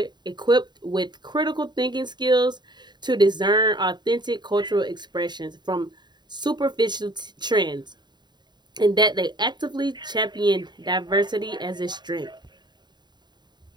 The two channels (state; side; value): late; left; 0.21 ms